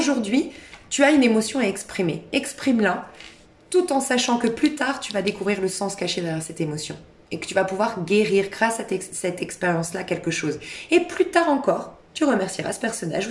tu as une émotion à exprimer. Exprime-la, tout en sachant que plus tard, tu vas découvrir le sens caché derrière cette émotion. Et que tu vas pouvoir guérir grâce à cette expérience-là quelque chose. Et plus tard encore, tu remercieras ce personnage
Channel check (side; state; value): both; identical; correlation 1.00